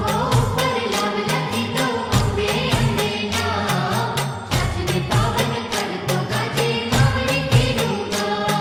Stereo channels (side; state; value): both; identical; correlation 1.00